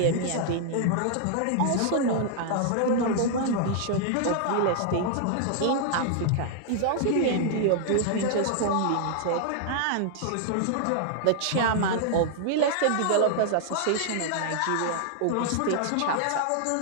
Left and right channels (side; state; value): both; different; correlation -0.01